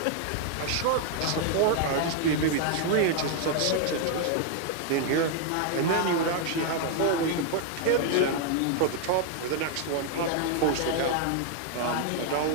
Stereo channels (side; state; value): both; different; correlation 0.00